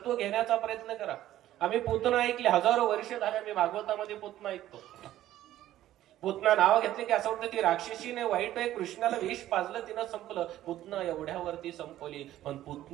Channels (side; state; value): left; quieter; 13.4 dB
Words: घेण्याचा प्रयत्न करा. आम्ही पुतना ऐकले, हजारो वर्ष झाले आम्ही भागवतामध्ये पुतना ऐकतो. पुतना नाव घेतले की असं वाटतं ती राक्षसीने, वाईट आहे, कृष्णाला विष पाजलं, तिनं संपलं. पुतना एवढ्यावरती संपवली, पण